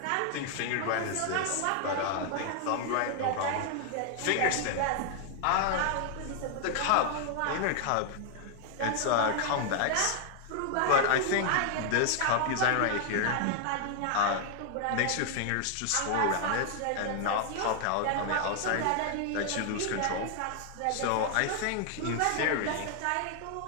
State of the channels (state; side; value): different; both; correlation 0.00